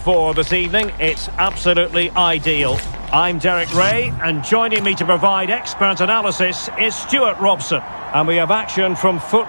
this evening. It's absolutely ideal. I'm Derek Ray, and joining me to provide expert analysis is Stuart Robson. And we have action from Foot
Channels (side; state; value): both; inverted; correlation -1.00